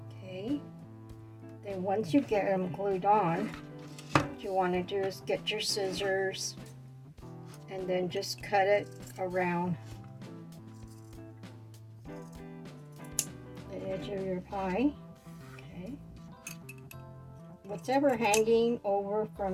Okay, then once you get them glued on, what you want to do is get your scissors and then just cut it around the edge of your pie. Okay. Whatever hanging over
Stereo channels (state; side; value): identical; both; correlation 1.00